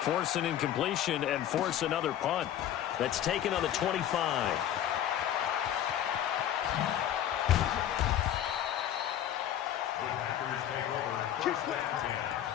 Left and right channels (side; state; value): right; quieter; 11.1 dB